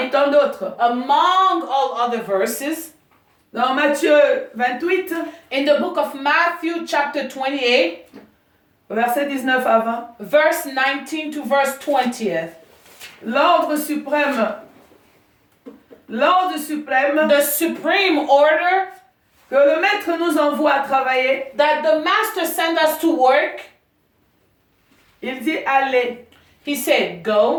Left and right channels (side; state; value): both; identical; correlation 1.00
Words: tant d'autres. among all other verses, Dans Matthieu 28, in the book of Matthew, chapter 28, verset 19 à 20. verse 19 to verse 20th. L'ordre suprême, The supreme order que le maître nous envoie à travailler, that the master sent us to work, il dit allez he said,